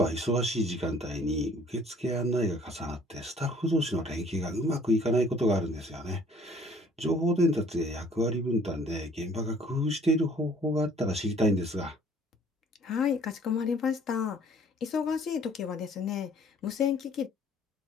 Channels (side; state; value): both; normal; correlation 0.56